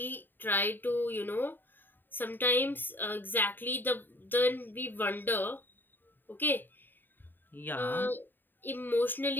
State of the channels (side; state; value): right; late; 0.093 ms